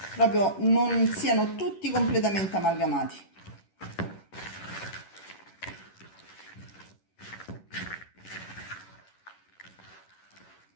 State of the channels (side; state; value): right; late; 11 ms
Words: proprio non siano tutti completamente amalgamati.